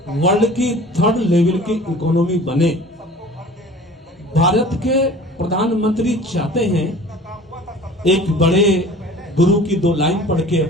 वर्ल्ड की 3rd लेवल की इकोनॉमी बने। भारत के प्रधानमंत्री चाहते हैं, एक बड़े गुरु की 2 लाइन पढ़ के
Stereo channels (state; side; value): normal; both; correlation 0.44